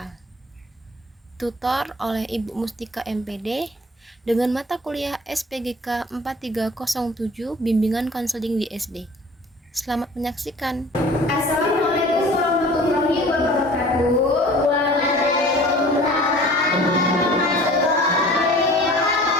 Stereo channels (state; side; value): normal; both; correlation 0.46